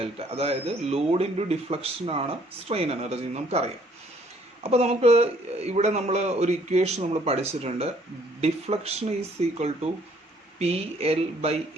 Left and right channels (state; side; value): normal; both; correlation 0.62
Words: അതായത് ലോഡ് ഇൻറ്റു ഡിഫ്ലക്ഷൻ ആണ് സ്ട്രെയിൻ എനർജി നമുക്കറിയാം. അപ്പോൾ നമുക്ക് ഇവിടെ നമ്മൾ ഒരു ഇക്വേഷൻ നമ്മൾ പഠിച്ചിട്ടുണ്ട്. Deflection is equal to PL by